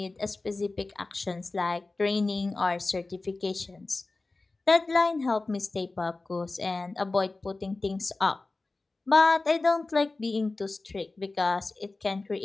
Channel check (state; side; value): quieter; right; 3.4 dB